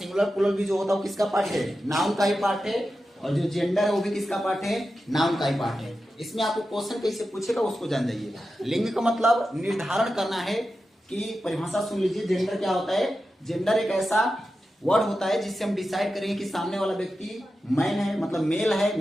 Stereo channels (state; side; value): normal; both; correlation 0.91